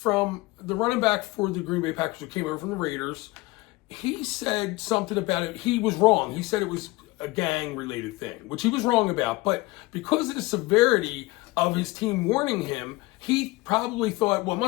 the running back for the Green Bay Packers who came over from the Raiders. He said something about it. He was wrong. He said it was a gang-related thing, which he was wrong about. But because of the severity of his team warning him, he probably thought, well, it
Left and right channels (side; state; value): right; quieter; 21.5 dB